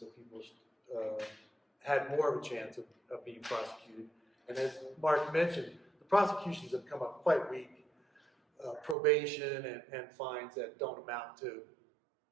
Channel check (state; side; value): drops out; left; at 9.0 s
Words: people had more of a chance of being prosecuted. And as Mark mentioned, the prosecutions have come up quite weak. Probation and fines that don't amount to